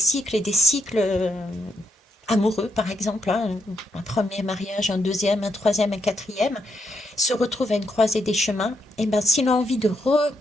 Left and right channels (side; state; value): both; normal; correlation 0.78